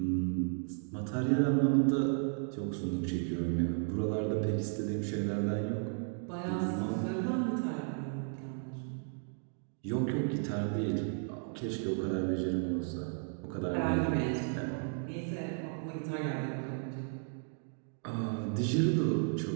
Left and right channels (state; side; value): silent; left; 55 dB below the other